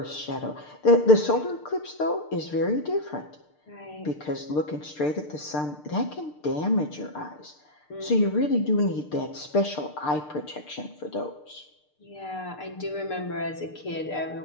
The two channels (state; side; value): late; right; 6.7 ms